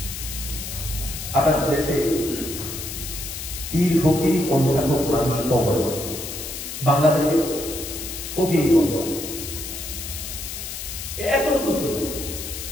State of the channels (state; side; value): noise; left; hiss, 7 dB below the sound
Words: আপনার দেশে পীর ফকির পন্থাকক মানুষ কম আছে বাংলাদেশে ফকির পন্থা এতটুকু